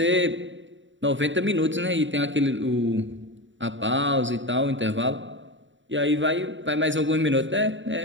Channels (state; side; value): late; left; 0.55 ms